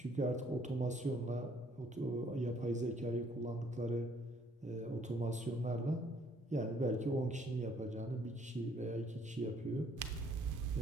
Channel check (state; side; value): normal; both; correlation 0.64